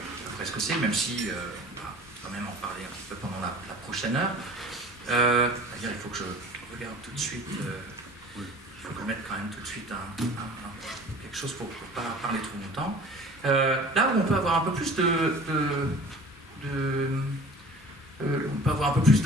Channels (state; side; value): normal; both; correlation 0.44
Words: ce que c'est, même si on va quand même en parler un petit peu pendant la prochaine heure. C'est-à-dire, il faut que je regarde tout de suite, il faut que je mette quand même tout de suite quelque chose pour ne pas parler trop longtemps. Là où on peut avoir un peu plus on peut avoir un peu plus